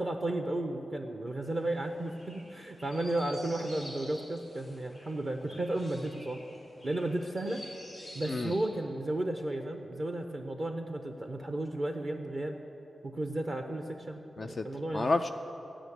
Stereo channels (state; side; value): normal; both; correlation 0.92